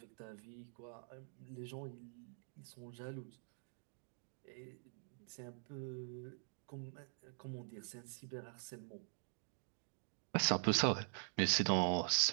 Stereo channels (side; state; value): left; silent; digital silence